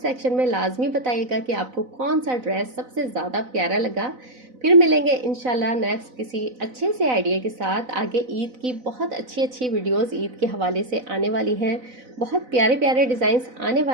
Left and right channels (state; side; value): late; left; 4.0 ms